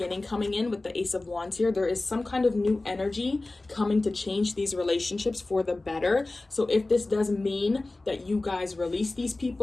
coming in with the Ace of Wands here. There is some kind of new energy coming to change these relationships for the better. So if this does mean that you guys release these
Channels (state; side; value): quieter; right; 3.1 dB